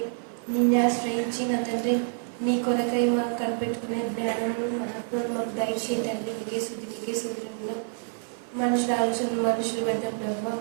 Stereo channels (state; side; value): silent; left; 57 dB below the other